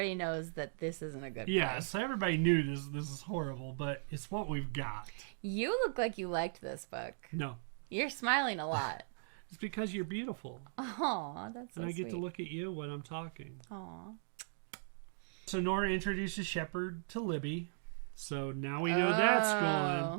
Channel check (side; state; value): left; silent; digital silence